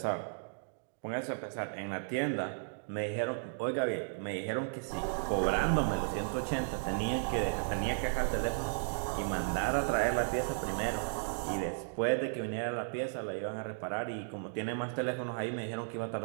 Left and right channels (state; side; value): silent; left; digital silence